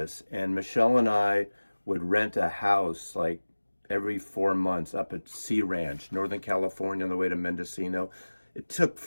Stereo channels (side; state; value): both; inverted; correlation -1.00